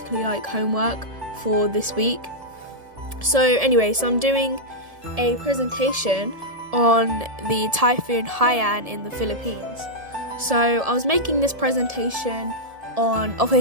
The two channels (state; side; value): late; left; 1.7 ms